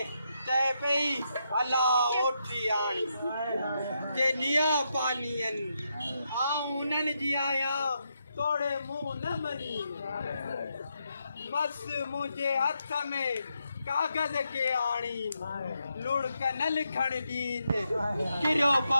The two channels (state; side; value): inverted; both; correlation -0.82